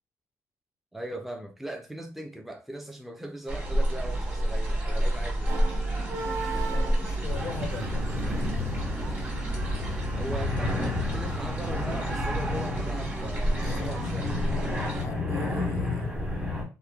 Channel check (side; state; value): both; normal; correlation 0.80